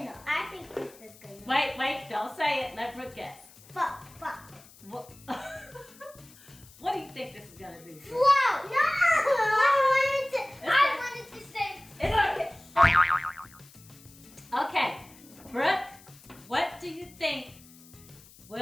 I think this is gonna. Wait, don't say it. Let Brooke guess. Fuck. What, what do you think this is gonna do? Float. No. I wanted to say. It's okay. Okay, Brooke, what do you think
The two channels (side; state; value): left; noise; hiss, 23 dB below the sound